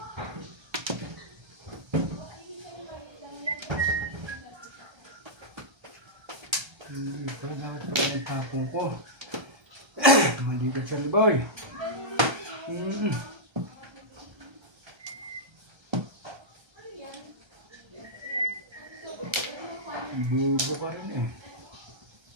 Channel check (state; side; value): late; left; 1.3 ms